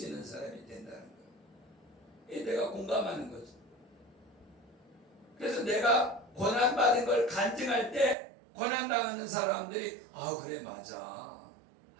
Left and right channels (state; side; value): drops out; left; at 8.2 s